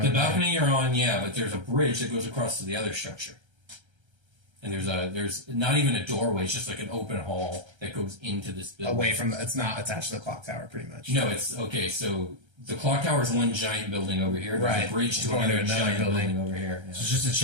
The balcony you're on, yeah, but there's a bridge that goes across to the other structure. And there's not even a doorway, it's just like an open hall that goes into this building. away from it's not attached to the clock tower, pretty much. No, it's okay, so the clock tower is one giant building over here. There's Right. a bridge to Going another to another giant building. building over here. Yeah. So just to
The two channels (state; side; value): late; left; 1.3 ms